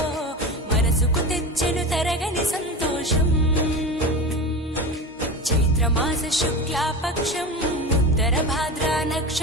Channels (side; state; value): both; normal; correlation 0.27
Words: మనసుకు తెచ్చెను తరగని సంతోషం చైత్రమాస శుక్లాపక్షం ఉత్తర భాద్రా